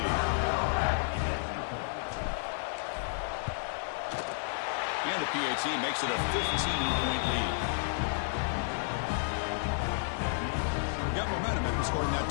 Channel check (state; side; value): silent; right; 57 dB below the other